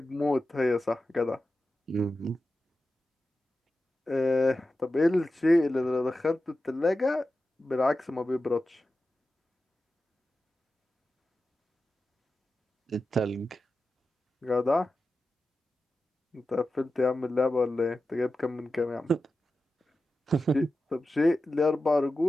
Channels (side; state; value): both; normal; correlation 0.92